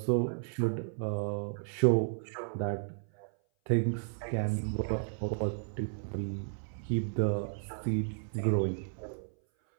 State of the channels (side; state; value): left; silent; 56 dB below the other